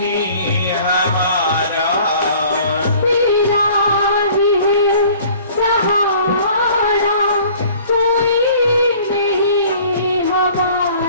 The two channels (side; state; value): both; inverted; correlation -0.51